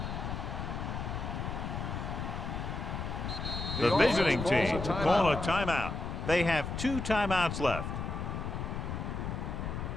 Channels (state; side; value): noise; left; rumble, 4 dB below the sound